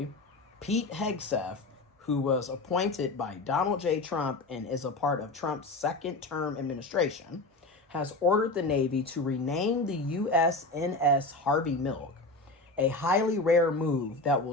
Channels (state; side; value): quieter; right; 3.1 dB